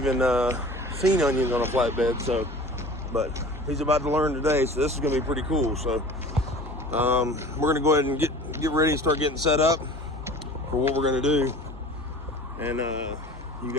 seen onions on a flatbed. So, but he's about to learn today, so this is going to be pretty cool. So we're going to go ahead and get ready and start getting set up for what we're going to do, and you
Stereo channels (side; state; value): both; normal; correlation 0.41